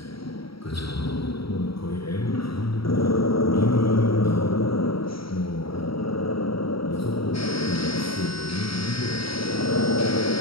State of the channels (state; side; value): late; right; 0.75 ms